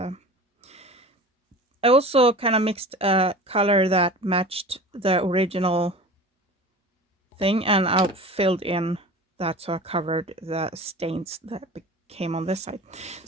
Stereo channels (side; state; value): both; normal; correlation 0.37